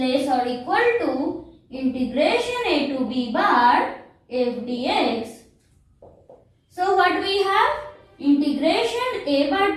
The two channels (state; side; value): identical; both; correlation 1.00